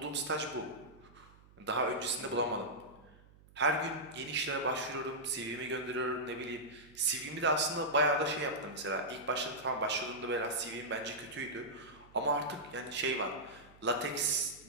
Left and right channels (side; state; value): right; noise; hum, 25 dB below the sound